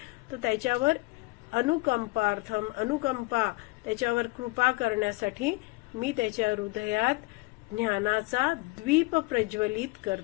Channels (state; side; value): quieter; right; 24.4 dB